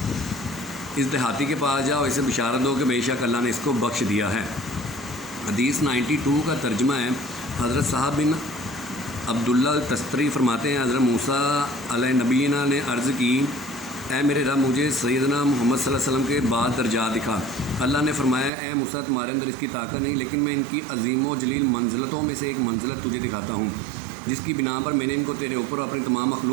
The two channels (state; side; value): drops out; left; at 18.5 s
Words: اس دیہاتی کے پاس جاؤ اسے بشارت دو کہ بے شک اللہ نے اس کو بخش دیا ہے۔ حدیث 92 کا ترجمہ ہے حضرت صاحب بن عبداللہ التستری فرماتے ہیں حضرت موسیٰ علیہ نبینا نے عرض کی اے میرے رب مجھے سیدنا محمد صلی اللہ علیہ وسلم کے بعد درجات دکھا۔ اللہ نے فرمایا اے موسیٰ تمہارے اندر اس کی طاقت نہیں، لیکن میں ان کی عظیم و جلیل منزلتوں میں سے ایک منزلت تجھے دکھاتا ہوں، جس کی بنا پر میں نے ان کو تیرے اوپر اپنی تمام